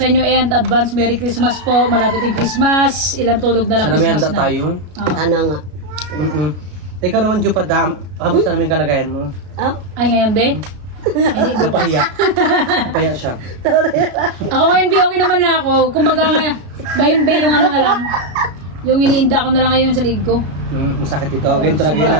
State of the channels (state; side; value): late; left; 33 ms